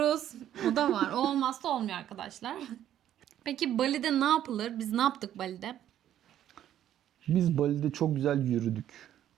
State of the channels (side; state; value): left; quieter; 11.3 dB